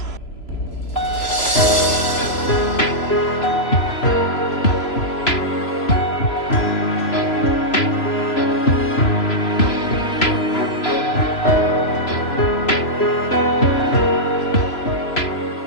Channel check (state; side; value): late; right; 3.0 ms